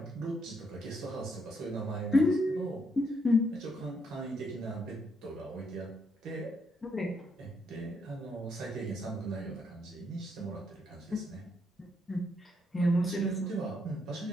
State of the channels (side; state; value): both; normal; correlation 0.75